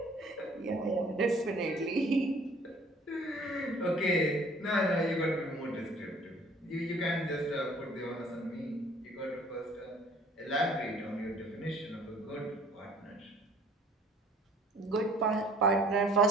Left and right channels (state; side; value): normal; both; correlation 0.54